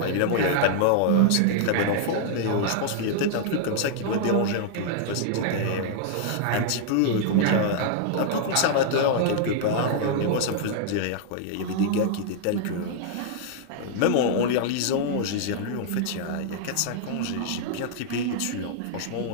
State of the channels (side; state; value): both; different; correlation -0.01